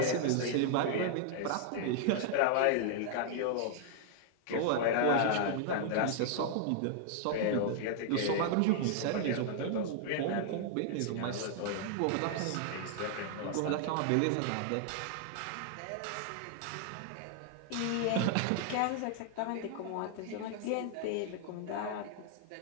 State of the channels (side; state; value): both; different; correlation -0.01